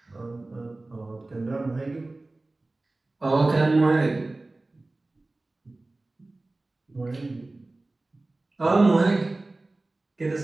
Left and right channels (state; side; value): quieter; left; 3.0 dB